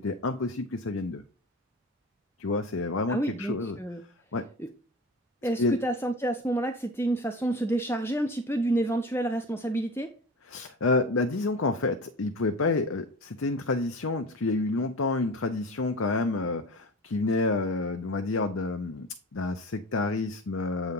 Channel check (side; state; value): both; normal; correlation 0.32